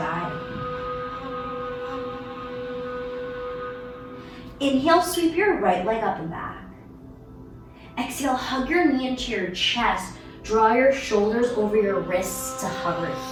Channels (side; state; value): both; identical; correlation 1.00